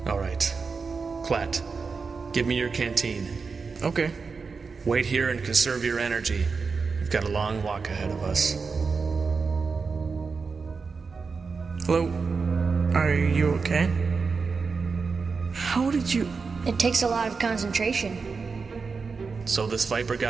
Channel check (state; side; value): quieter; left; 4.9 dB